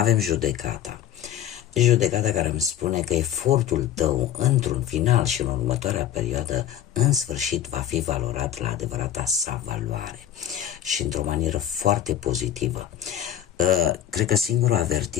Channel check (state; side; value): quieter; right; 10.7 dB